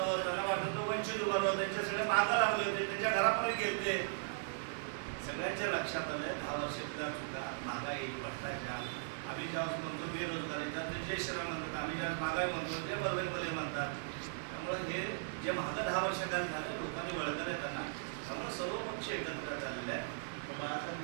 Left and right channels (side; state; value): left; silent; 52 dB below the other